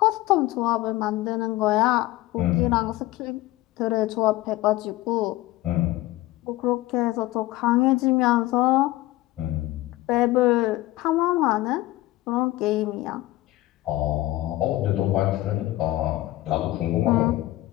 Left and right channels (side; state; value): right; quieter; 17.4 dB